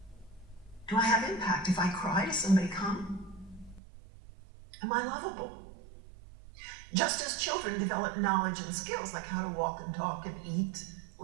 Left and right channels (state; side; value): drops out; left; at 3.8 s